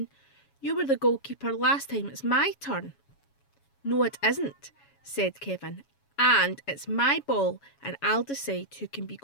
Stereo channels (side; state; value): right; late; 7.2 ms